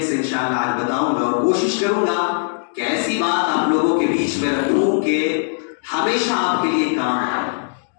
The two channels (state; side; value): silent; right; digital silence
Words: سے انشاءاللہ آج بتاؤں گا، اور کوشش کروں گا کہ ایسی بات آپ لوگوں کے بیچ میں رکھوں کہ ہمیشہ آپ کے لیے کام آئے۔